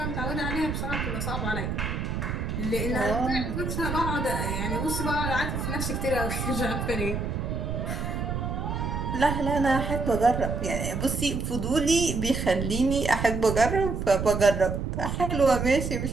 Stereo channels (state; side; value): noise; right; rumble, 3 dB below the sound